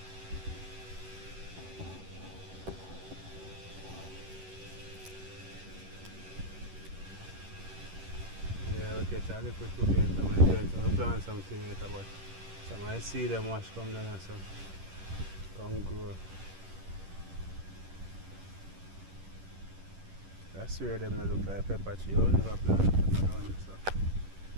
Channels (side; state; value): left; late; 11 ms